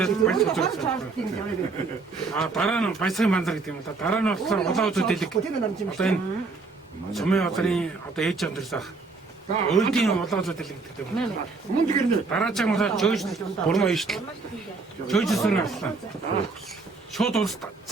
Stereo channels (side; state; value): left; quieter; 4.1 dB